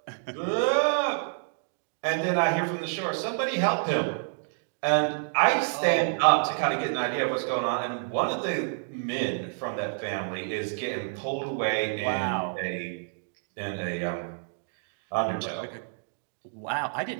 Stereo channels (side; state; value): left; silent; digital silence